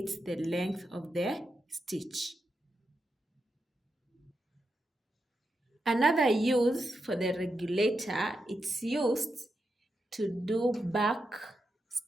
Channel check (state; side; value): normal; both; correlation 0.86